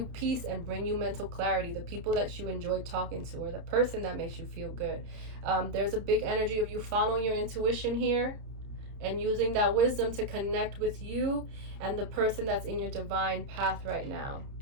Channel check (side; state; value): left; late; 30 ms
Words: peace and bring you mental clarity, the people that you enjoy talking to or the person that makes you feel good. There's a big energy of you following your intuition here and using that wisdom to connect with you and the person that's in your divine path right now.